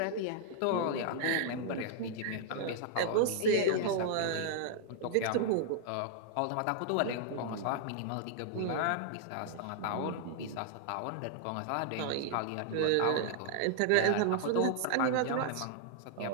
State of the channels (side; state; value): both; different; correlation -0.01